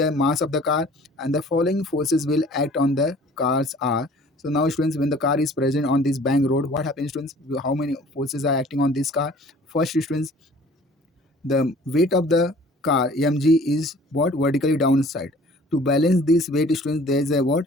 mass of the car and the following forces will act on the car's r. So now students, when the car is present on this bank road, what happens students? How many forces are acting on this car? First students, the weight of the car mg is what? Vertically downside. To balance this weight students, there is a what?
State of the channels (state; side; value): normal; both; correlation 0.51